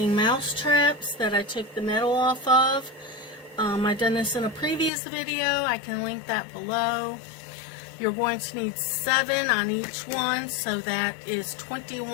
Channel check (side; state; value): right; drops out; at 4.9 s